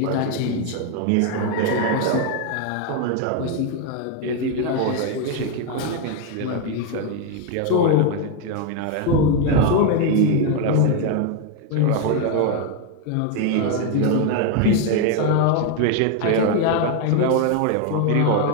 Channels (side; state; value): both; different; correlation 0.01